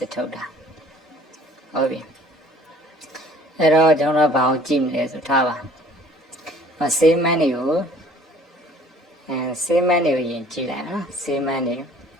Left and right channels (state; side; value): normal; both; correlation 0.53